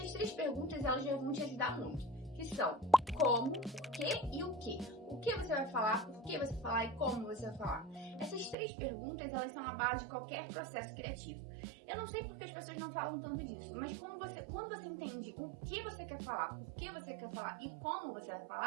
3 perguntas, elas já vão te ajudar muito, que são como, por quê e o quê. O que você vai falar, por que você vai falar e como você vai falar. Essas 3 perguntas, elas são a base de qualquer processo criativo. Eu não sei porque as pessoas não falam tanto disso, mas quando você entende o que você quer falar, por que você quer falar e como você vai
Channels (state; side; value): drops out; left; at 8.6 s